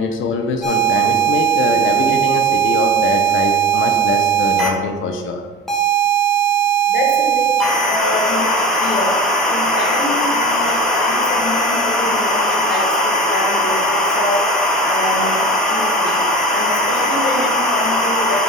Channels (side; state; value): both; normal; correlation 0.32